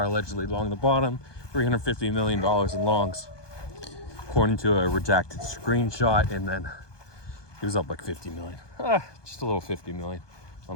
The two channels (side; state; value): right; late; 1.2 ms